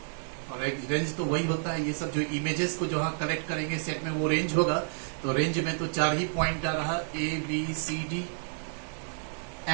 और एक रेंज तो वही होता है, ये सब जो इमेजेस को जो हाँ कलेक्ट करेंगे सेट में वो रेंज होगा. तो रेंज में तो 4 ही पॉइंट आ रहा, A B C D.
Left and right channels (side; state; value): left; silent; 56 dB below the other